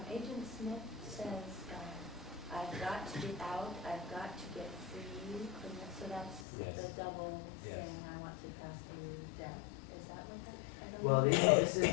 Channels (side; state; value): right; drops out; at 6.5 s